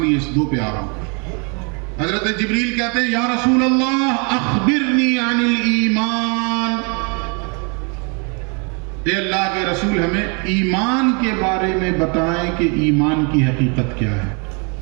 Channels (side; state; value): left; quieter; 34.9 dB